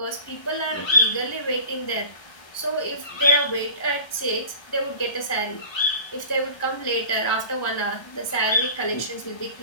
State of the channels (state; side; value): late; right; 1.2 ms